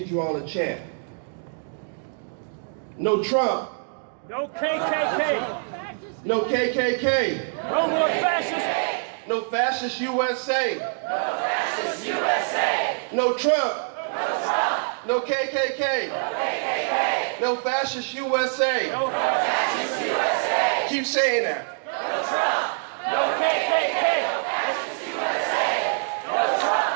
you all a chant. No Trump. No KKK. No KKK. No more fascists. No fascist USA. No fascist USA. No Trump. No Trump. No KKK. No KKK. No fascist USA. No Fascist USA. Keep saying that. No Trump. No KKK. No fascist USA. No Trump.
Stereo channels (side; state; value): left; silent; digital silence